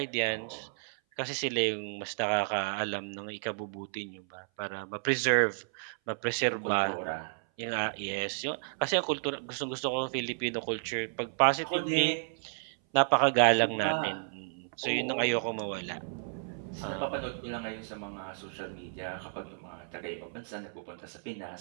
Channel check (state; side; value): silent; left; 56 dB below the other